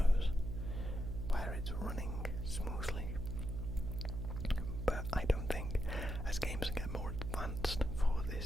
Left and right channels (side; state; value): right; noise; hum, 4 dB below the sound